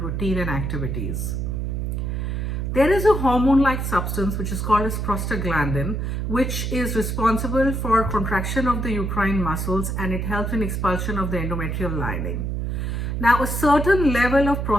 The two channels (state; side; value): noise; right; hum, 2 dB below the sound